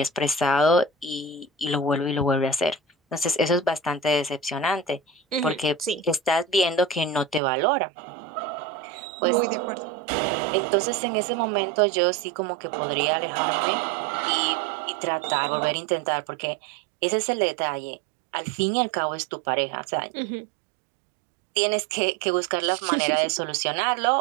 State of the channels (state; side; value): drops out; left; at 7.4 s